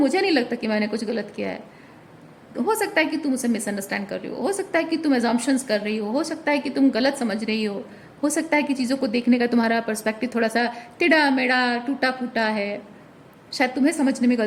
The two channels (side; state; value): both; identical; correlation 1.00